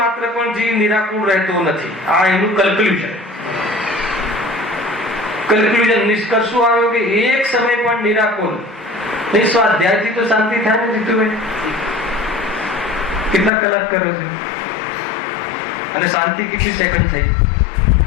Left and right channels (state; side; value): drops out; right; at 13.5 s